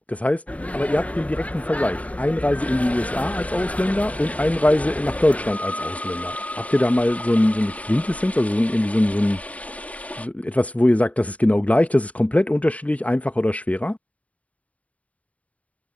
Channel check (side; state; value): right; late; 0.068 ms